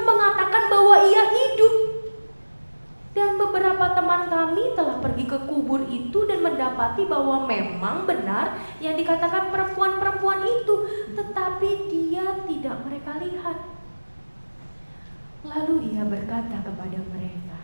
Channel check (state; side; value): inverted; both; correlation -1.00